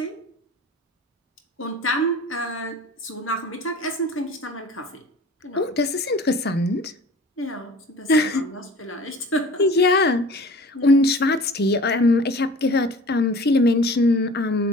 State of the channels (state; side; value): normal; both; correlation 0.43